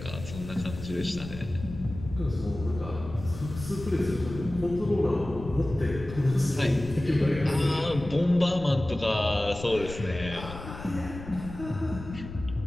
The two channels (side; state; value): left; noise; rumble, 11 dB below the sound